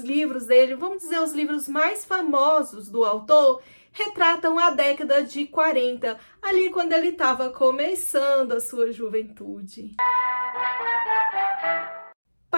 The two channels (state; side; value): inverted; both; correlation -1.00